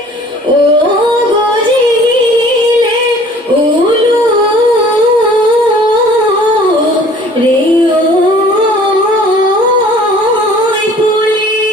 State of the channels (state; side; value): normal; both; correlation 0.51